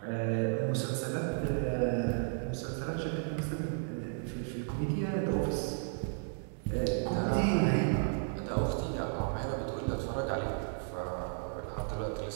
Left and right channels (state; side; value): silent; left; digital silence